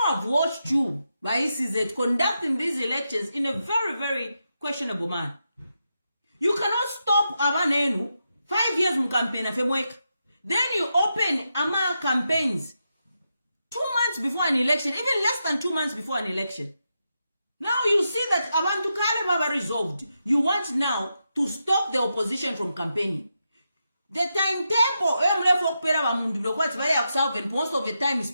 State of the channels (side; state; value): both; inverted; correlation -0.86